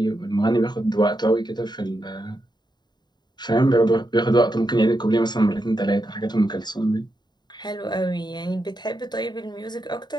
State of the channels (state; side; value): late; right; 0.21 ms